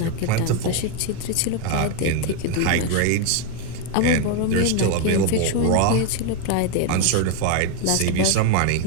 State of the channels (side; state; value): both; different; correlation 0.01